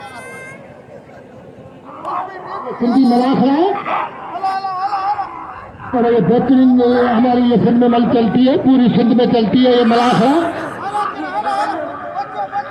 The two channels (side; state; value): both; identical; correlation 1.00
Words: सिंधी मलाखड़ा है और ये बेहतरीन हमारी ये सिंध में मल चलती है पूरी सिंध में चलती है ये मलाखड़ा